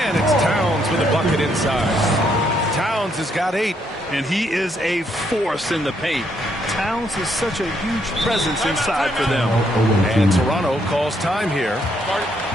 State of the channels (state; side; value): normal; both; correlation 0.73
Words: it's Towns with a bucket inside. Towns has got 8. And he is a force in the paint. Towns is such a huge presence inside for them. And Toronto calls time here.